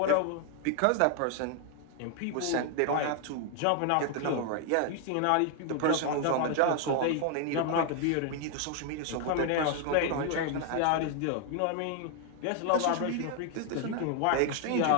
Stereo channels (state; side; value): different; both; correlation 0.00